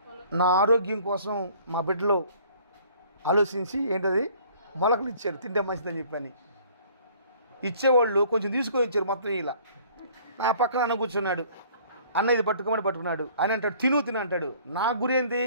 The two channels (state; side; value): inverted; both; correlation -0.55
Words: నా ఆరోగ్యం కోసం మా బిడ్డలో ఆలోచించి ఏంటది మొలకలు ఇచ్చారు, తింటే మంచిదని చెప్పని. ఇచ్చేవాళ్ళు కొంచెం తీసుకొని ఇచ్చారు మొత్తం. ఇలా నా పక్కన అన్న కూర్చున్నాడు. అన్న ఇది పట్టుకోమని పట్టుకున్నాడు. ఆయన అంటాడు తిను అంటాడు. నా గురి ఏంది,